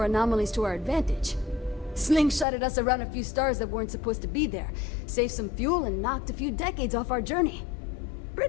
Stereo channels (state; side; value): drops out; right; at 2.5 s